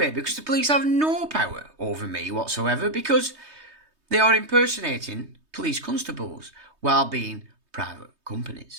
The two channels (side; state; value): left; late; 3.2 ms